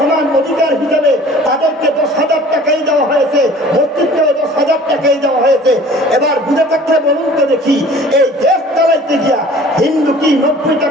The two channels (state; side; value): normal; both; correlation 0.48